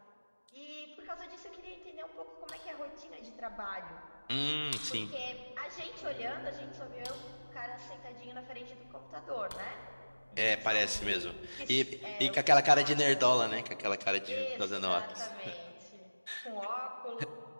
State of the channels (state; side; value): inverted; both; correlation -1.00